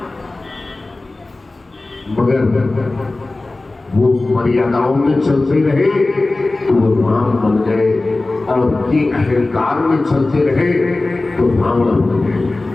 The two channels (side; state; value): right; quieter; 3.1 dB